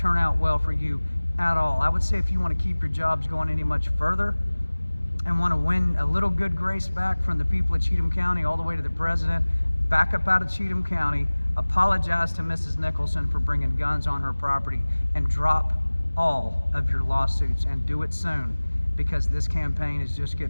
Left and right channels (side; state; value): both; inverted; correlation -1.00